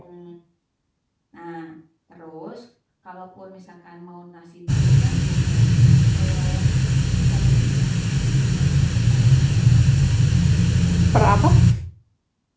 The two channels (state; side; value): identical; both; correlation 1.00